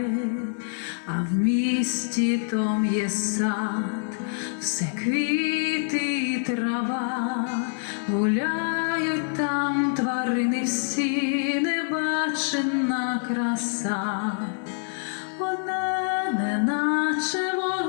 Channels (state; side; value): silent; right; digital silence